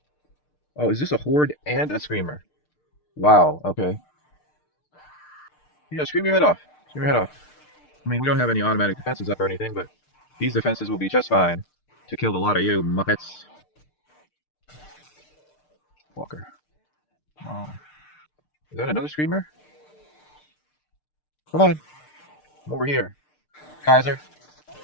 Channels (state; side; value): late; right; 6.6 ms